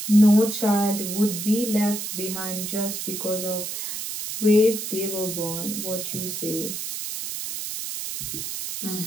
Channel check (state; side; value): noise; right; hiss, 5 dB below the sound